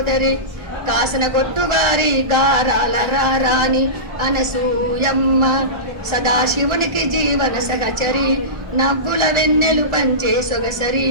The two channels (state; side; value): late; left; 1.4 ms